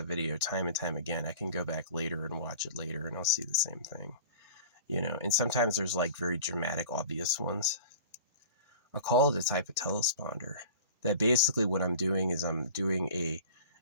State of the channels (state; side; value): inverted; both; correlation -0.40